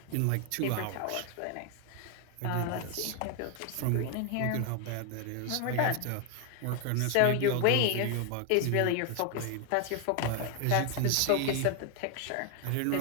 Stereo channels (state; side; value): different; both; correlation 0.00